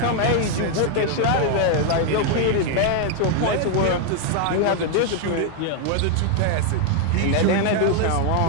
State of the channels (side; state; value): both; different; correlation 0.00